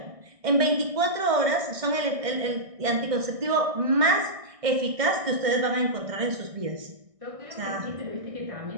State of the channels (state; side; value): late; left; 1.6 ms